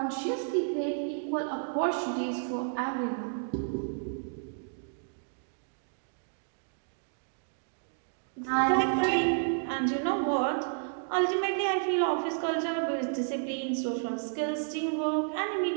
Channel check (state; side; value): silent; left; digital silence